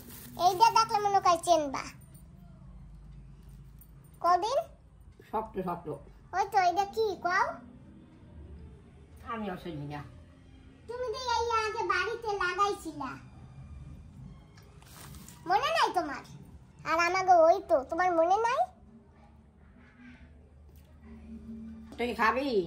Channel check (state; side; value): identical; both; correlation 1.00